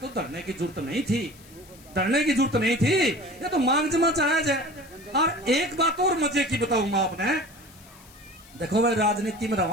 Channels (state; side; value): noise; left; hiss, 24 dB below the sound